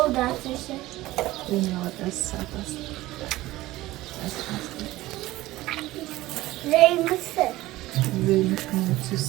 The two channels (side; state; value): left; quieter; 17.5 dB